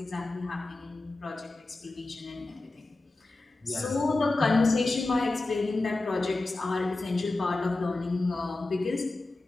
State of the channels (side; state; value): right; quieter; 3.1 dB